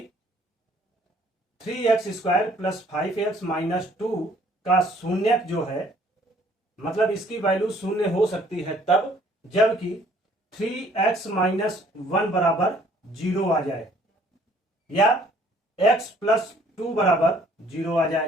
3x² + 5x - 2 का शून्यक जो है, मतलब इसकी वैल्यू शून्य हो सकती है तब जबकि 3x - 1 = 0 आ जाए, या x + 2 = 0 आ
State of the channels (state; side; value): normal; both; correlation 0.59